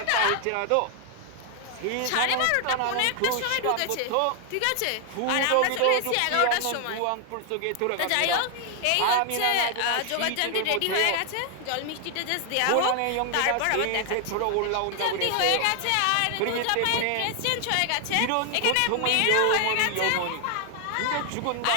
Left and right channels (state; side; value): different; both; correlation 0.00